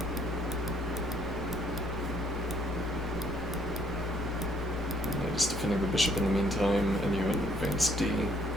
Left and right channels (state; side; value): normal; both; correlation 0.65